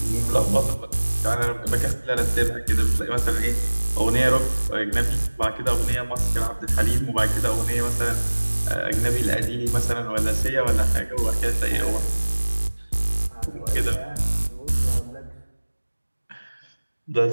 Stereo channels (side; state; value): both; inverted; correlation -1.00